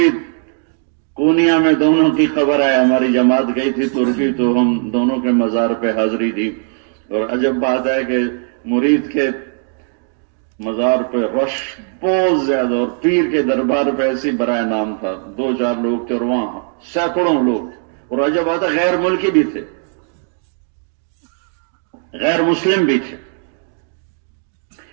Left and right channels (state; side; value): silent; left; 55 dB below the other